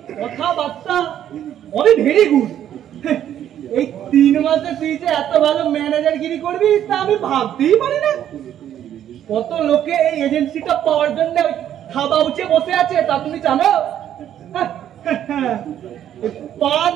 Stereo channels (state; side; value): quieter; left; 10.7 dB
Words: কথাবার্তা অনেক ভেরি গুড। এই 3 মাসে তুই যে এত ভালো ম্যানেজারগিরি করবি তা আমি ভাবতেই পারি না। কত লোকে এই এজেন্সিটা পাওয়ার জন্য খাবা উঠে বসে আছে তা তুমি জানো? পান